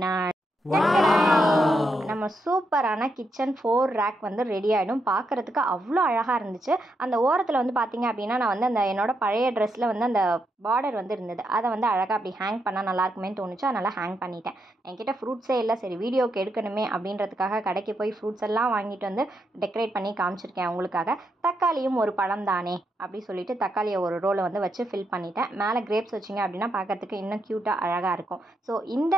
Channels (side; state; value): both; normal; correlation 0.81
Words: நம்ம சூப்பரான கிச்சன் 4 ரேக் வந்து ரெடி ஆகிடும். பார்க்குறதுக்கு அவ்வளோ அழகாக இருந்துச்சு. அந்த ஓரத்தில் வந்து பார்த்தீங்க அப்படின்னா நான் வந்து அந்த என்னோடய பழைய ட்ரெஸ்ஸில் வந்து அந்த பார்டர் வந்து இருந்தது. அதை வந்து அழகாக அப்படி ஹேங் பண்ணால் நல்லாயிருக்குமேன்னு தோணுச்சு. அதனால் ஹேங் பண்ணிட்டேன். என்கிட்ட ஃப்ரூட்ஸே இல்லை, சரி வீடியோக்கு எடுக்கணுமே அப்படின்றதுக்காக கடைக்கு போய் ஃப்ரூட்ஸ் எல்லாம் வாங்கிட்டு வந்து டெக்கரேட் பண்ணி காமிச்சிருக்கேன் உங்களுக்காக. தக்காளியும் ஒரு பழம் தானே அப்படி சொல்லிட்டு தக்காளியை ஒரு ரோலை வந்து வச்சு ஃபில் பண்ணிட்டேன். மேலே கிரேப்ஸ் வச்சிங்க அப்படின்னா பார்க்கறதுக்கு இன்னும் க்யூட்டாக அழகாக இருக்கும். ஸோ இந்த